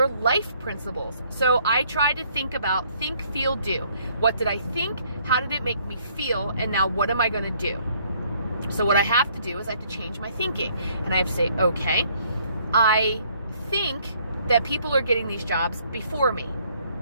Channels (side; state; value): both; inverted; correlation -0.65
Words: life principles. So I try to think about Think, Feel, Do. What did I think? How did it make me feel? And now what am I going to do? So what I have to do is I have to change my thinking, and I have to say, okay, I think that people are getting these jobs before me,